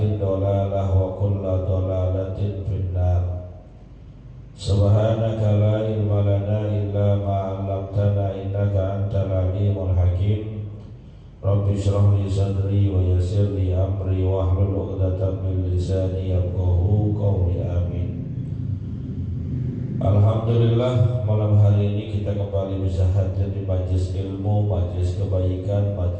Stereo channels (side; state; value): both; identical; correlation 1.00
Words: dhalalah wa kullu dhalalatin finnar. Subhanaka la ilma lana illa ma 'allamtana innaka antal alimul hakim. Rabbi shrah li sadri wa yassir li amri wahlul 'uqdatam min lisani yafqahu qawli. Amin. Alhamdulillah, malam hari ini kita kembali bisa hadir di majlis ilmu, majlis kebaikan,